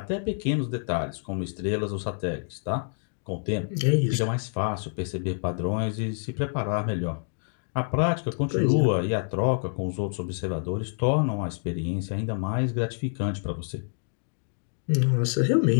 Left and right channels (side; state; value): right; silent; digital silence